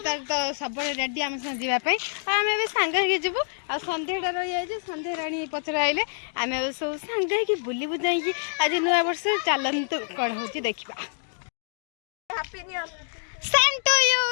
तो सब रेडी आम संग जावाई आम ए सांग के जीवु आ संध्याटा रही जाए संध्या राणी पचर आइले आम सब सांग बुली बुझाई आज नुआ वर्ष चलतु कौन हो देखा सेम टू यू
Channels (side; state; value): right; silent; digital silence